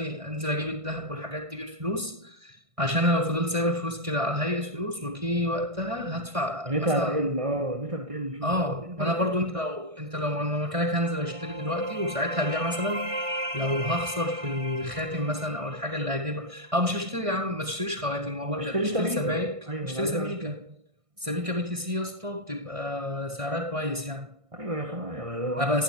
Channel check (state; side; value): late; left; 1.6 ms